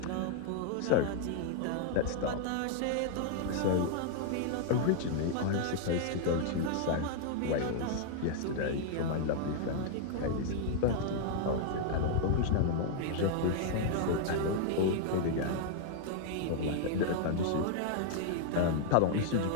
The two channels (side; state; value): both; different; correlation 0.00